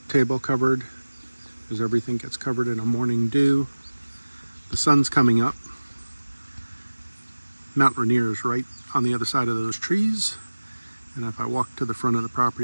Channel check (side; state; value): both; inverted; correlation -1.00